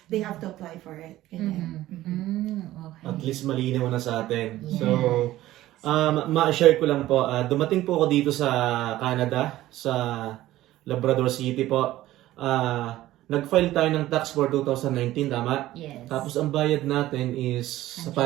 They have to apply for it. Ganyan. Okay. At least malinaw na sa atin. Yeah. So, ma-share ko lang po, dumating po ako dito sa Canada, sa Labrador City po. Nag-file tayo ng tax for 2019, tama? Yes. Tapos ang bayad natin is sa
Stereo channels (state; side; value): quieter; left; 15.3 dB